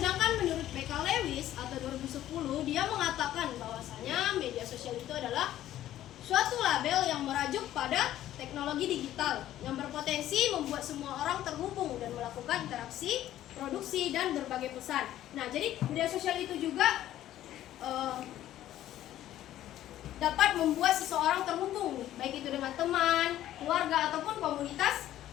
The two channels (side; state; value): right; quieter; 12.9 dB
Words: menurut BK Lewis atau 2010, dia mengatakan bahwasanya media sosial itu adalah suatu label yang merajuk pada teknologi teknologi digital yang berpotensi membuat semua orang terhubung dan melakukan interaksi, produksi, dan berbagai pesan. Nah, jadi media sosial itu juga dapat membuat seseorang terhubung, baik itu dengan teman, keluarga, ataupun komunitas